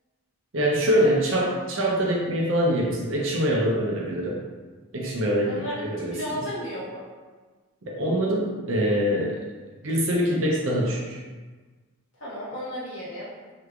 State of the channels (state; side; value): normal; both; correlation 0.29